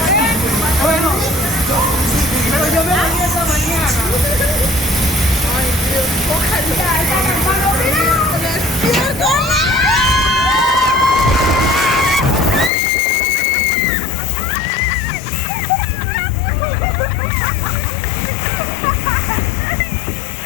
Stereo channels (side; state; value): right; drops out; at 12.7 s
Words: Bueno, pero yo me bañé esta mañana.